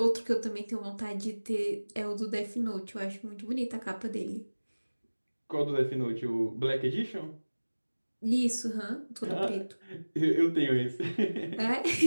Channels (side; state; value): both; inverted; correlation -1.00